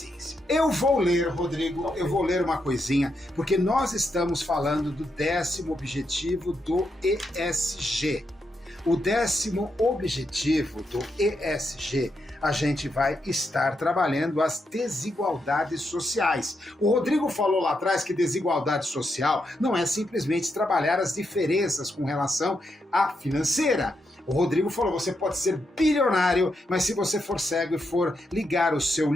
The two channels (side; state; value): both; normal; correlation 0.82